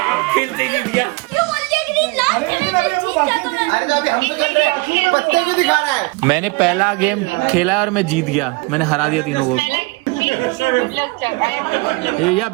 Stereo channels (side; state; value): left; quieter; 26.4 dB